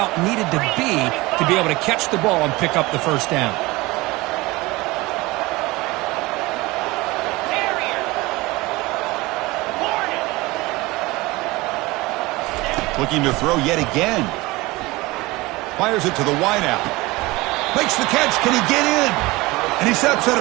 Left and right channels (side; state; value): left; quieter; 21.4 dB